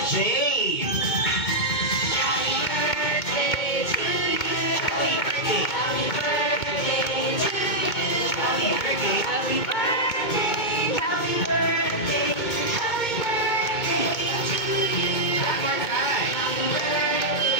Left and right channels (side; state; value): right; late; 2.2 ms